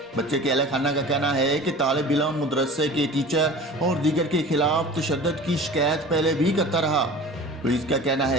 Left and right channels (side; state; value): both; normal; correlation 0.39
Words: بچے کے اہل خانہ کا کہنا ہے کہ طالب علم مدرسے کے ٹیچر اور دیگر کے خلاف تشدد کی شکایت پہلے بھی کرتا رہا۔ پولیس کا کہنا